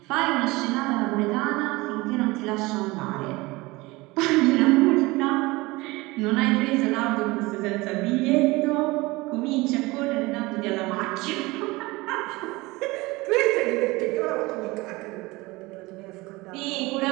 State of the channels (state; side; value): quieter; left; 22.0 dB